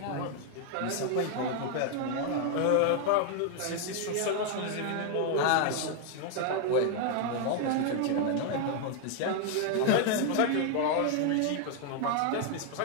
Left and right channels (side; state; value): both; different; correlation 0.00